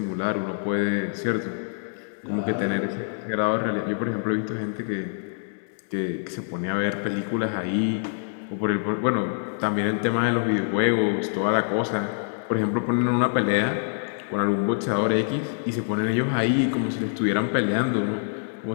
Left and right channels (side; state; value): right; silent; digital silence